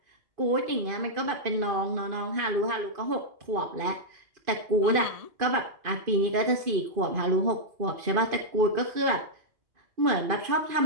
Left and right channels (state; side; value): late; left; 2.5 ms